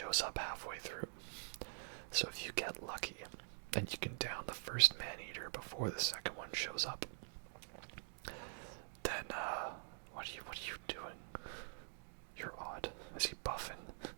up halfway through. So if you get lucky, then you can down the first Maneater before the second one shows up. Then, what are you doing? You're odd. Is he buffing?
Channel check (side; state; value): left; silent; digital silence